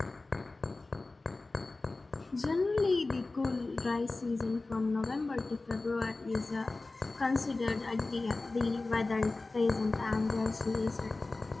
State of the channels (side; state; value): right; quieter; 3.3 dB